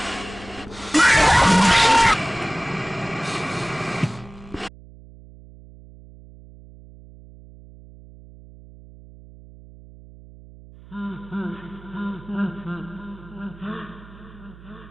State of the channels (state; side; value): noise; right; hum, 20 dB below the sound